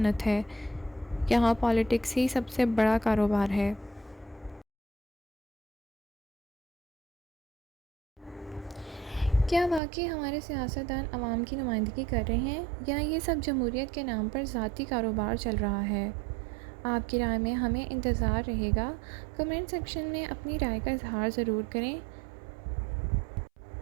ہے، یہاں پالیٹکس ہی سب سے بڑا کاروبار ہے۔ کیا واقعی ہمارے سیاستدان عوام کی نمائندگی کر رہے ہیں یا یہ سب جمہوریت کے نام پر ذاتی کاروبار چل رہا ہے؟ آپ کی رائے میں ہمیں انتظار رہے گا۔ کمنٹ سیکشن میں اپنی رائے کا اظہار ضرور کریں۔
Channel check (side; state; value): left; drops out; at 9.8 s